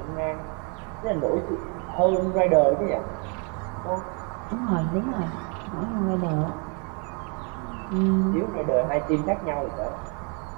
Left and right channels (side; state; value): left; quieter; 36.0 dB